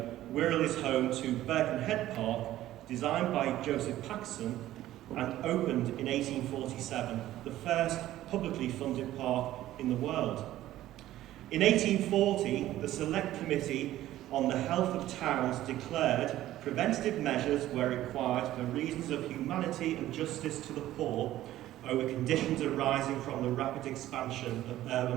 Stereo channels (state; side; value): quieter; left; 14.2 dB